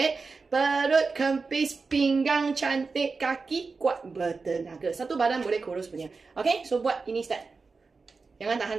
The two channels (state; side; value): quieter; left; 4.4 dB